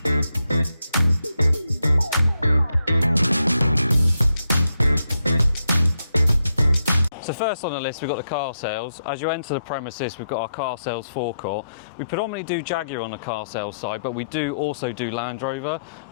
So first on the list, we've got the car sales. As you enter the premises, we've got our car sales forecourt. We predominantly do Jaguar on the car sales side, but we do also do Land Rover.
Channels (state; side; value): inverted; both; correlation -0.82